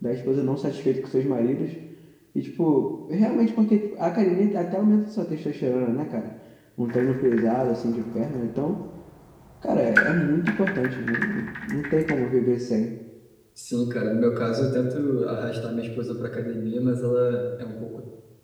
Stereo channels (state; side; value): identical; both; correlation 1.00